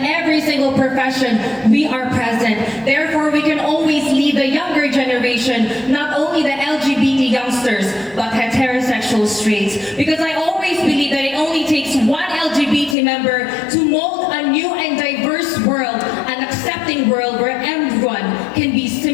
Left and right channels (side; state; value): right; drops out; at 13.0 s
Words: every single profession we are present. Therefore, we can always lead the younger generation, not only the LGBT youngsters, but heterosexual straights. Because I always believe that it only takes one LGBT member to mold a new and diverse world, an accepting world where everyone can be